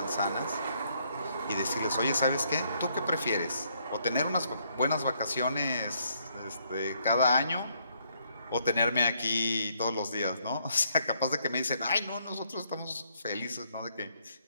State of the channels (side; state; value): both; inverted; correlation -0.71